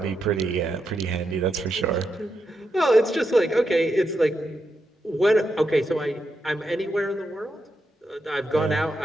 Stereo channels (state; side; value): normal; both; correlation 0.84